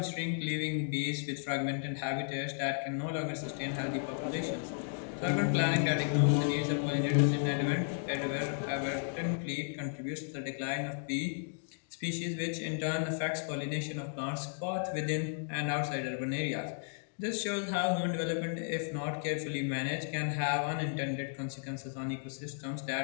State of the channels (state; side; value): silent; right; digital silence